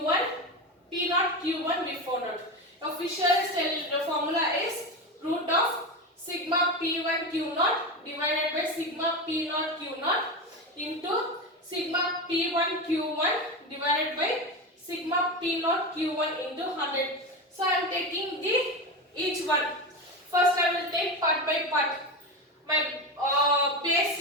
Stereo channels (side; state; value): both; normal; correlation 0.19